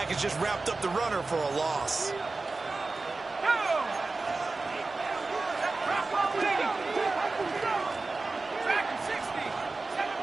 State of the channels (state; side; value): quieter; left; 3.6 dB